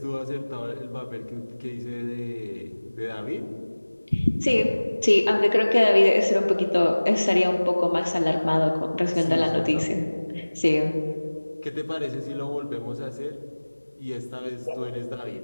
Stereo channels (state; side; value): inverted; both; correlation -1.00